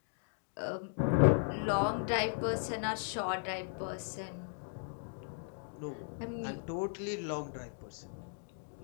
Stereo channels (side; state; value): right; silent; digital silence